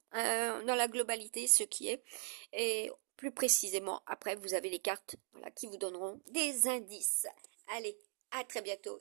dans la globalité ce qui est, et plus précisément après vous avez les cartes, voilà, qui vous donneront des indices. Allez, à très bientôt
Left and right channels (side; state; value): left; silent; 52 dB below the other